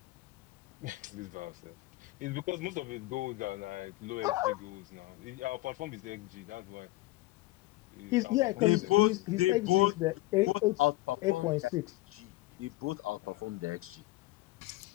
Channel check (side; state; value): right; quieter; 19.0 dB